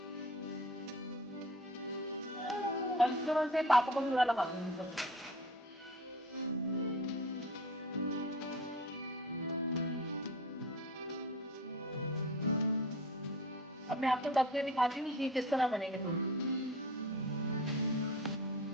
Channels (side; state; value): both; normal; correlation 0.38